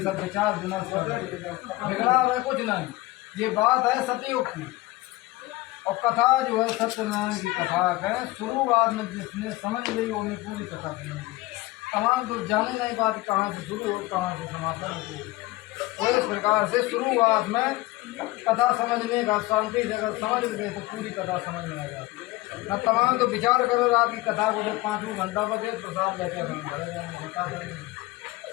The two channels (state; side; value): quieter; right; 19.3 dB